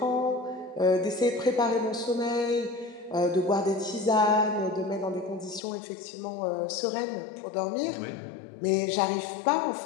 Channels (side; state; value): right; drops out; at 5.6 s